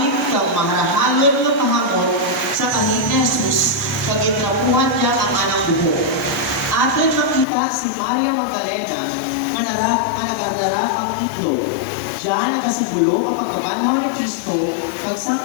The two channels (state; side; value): drops out; right; at 7.5 s